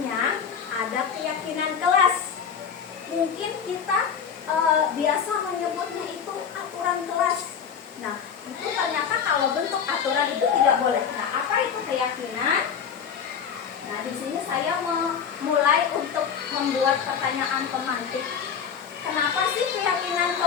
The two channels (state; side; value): quieter; right; 7.2 dB